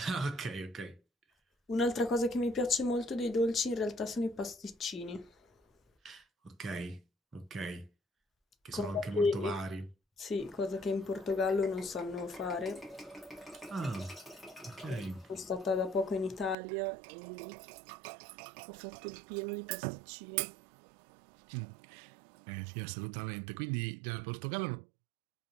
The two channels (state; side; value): drops out; left; at 16.6 s